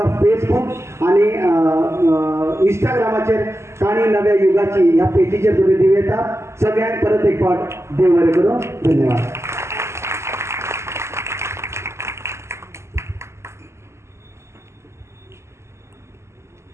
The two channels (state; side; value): late; left; 0.13 ms